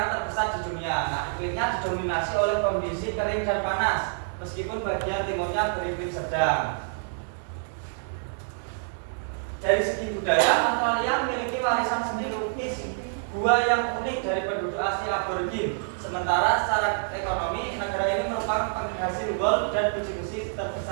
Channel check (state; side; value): silent; left; digital silence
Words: terbesar di dunia. Nah, iklimnya didominasi oleh kondisi kering dan panas, meskipun bagian timurnya beriklim sedang. Dari segi budaya, Australia memiliki warisan seni lukis gua yang unik dari penduduk asli aborigin. Sementara secara ekonomi, negara ini merupakan penghasil gold dan biji besi